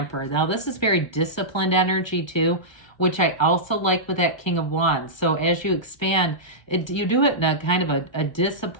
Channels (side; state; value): right; late; 1.2 ms